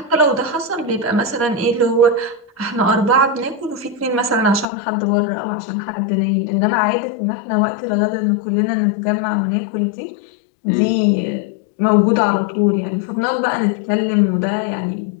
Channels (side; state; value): right; drops out; at 4.7 s